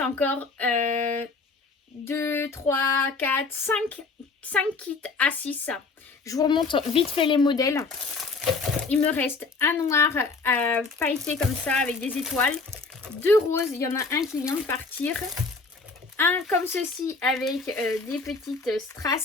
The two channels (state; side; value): quieter; right; 4.1 dB